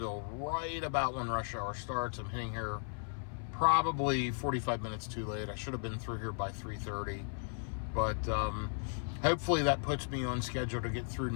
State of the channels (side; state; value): right; silent; 54 dB below the other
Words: right about when rush hour starts. I'm hitting here probably 45 minutes too late. I should have been through here by 3:30. But hopefully that puts me on schedule to get through